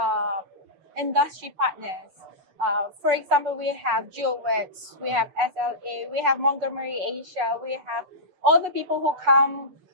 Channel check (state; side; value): late; left; 6.8 ms